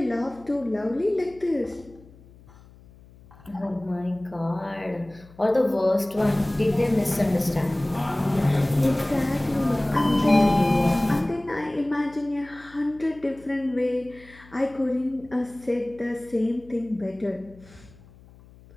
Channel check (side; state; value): left; noise; hum, 24 dB below the sound